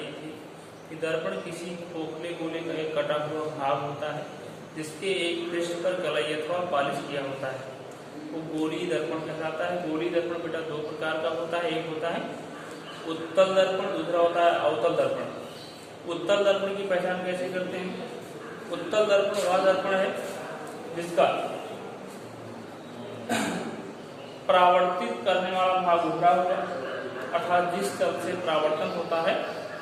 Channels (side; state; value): both; identical; correlation 1.00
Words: थी कि दर्पण किसी खोखले गोले का एक कटा हुआ भाग होता है जिसके एक पृष्ठ पर कलई अथवा पॉलिश किया होता है। वो गोलीय दर्पण कहलाता है। गोलीय दर्पण बेटा दो प्रकार का होता है। एक होता है उत्तल दर्पण, दूसरा होता है अवतल दर्पण। उत्तल दर्पण की पहचान कैसे करते हैं? उत्तल दर्पण वह दर्पण है जिसका परावर्तित करने वाला भाग उभरा हुआ, अर्थात जिस तल से परावर्तन होता है